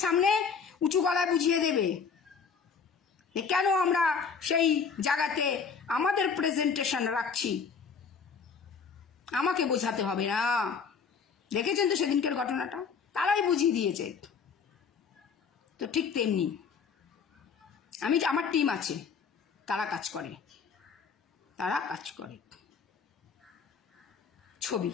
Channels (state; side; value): quieter; right; 5.8 dB